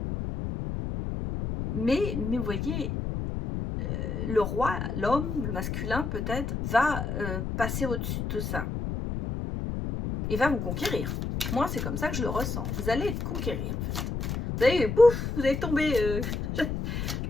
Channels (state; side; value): noise; left; rumble, 3 dB below the sound